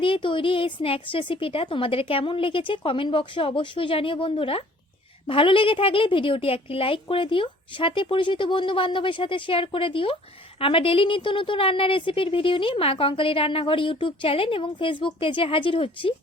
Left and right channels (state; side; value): normal; both; correlation 0.54